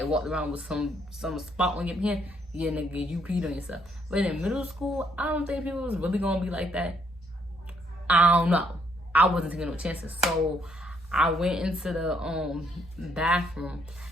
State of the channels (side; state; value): both; normal; correlation 0.71